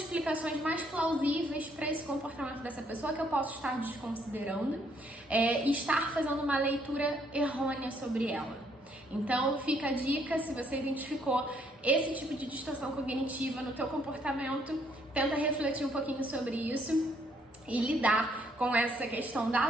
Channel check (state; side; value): normal; both; correlation 0.69